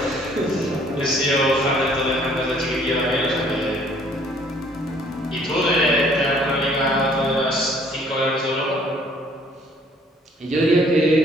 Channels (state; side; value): normal; both; correlation 0.60